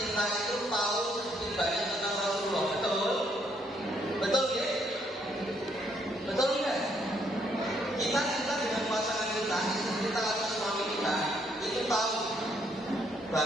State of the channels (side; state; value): both; normal; correlation 0.71